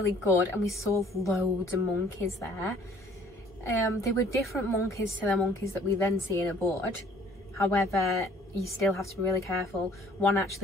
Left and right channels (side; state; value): both; normal; correlation 0.56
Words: good, and we saw loads of monkeys there. They were different monkeys to the monkeys that we then see in a board. However, you still have to be really careful. One